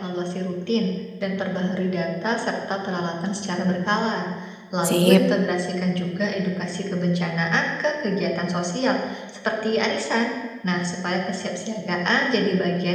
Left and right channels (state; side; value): identical; both; correlation 1.00